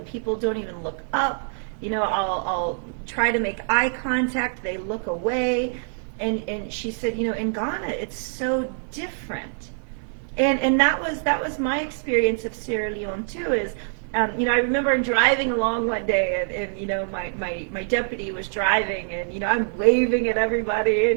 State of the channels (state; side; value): silent; left; digital silence